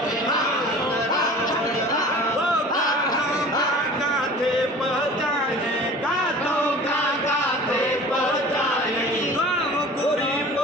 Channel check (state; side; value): normal; both; correlation 0.42